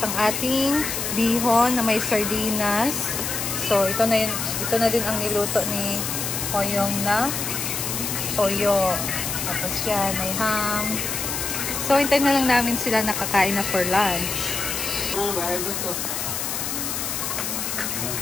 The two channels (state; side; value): noise; left; hiss, 3 dB below the sound